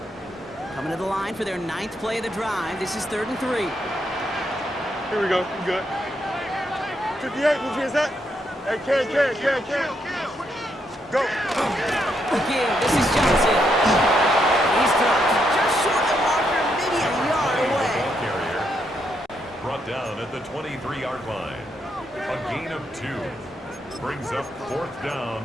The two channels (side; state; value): both; normal; correlation 0.78